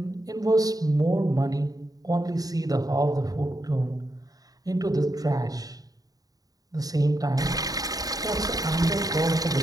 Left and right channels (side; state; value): left; late; 0.18 ms